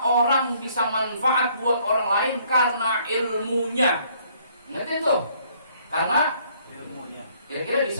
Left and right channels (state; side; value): inverted; both; correlation -0.63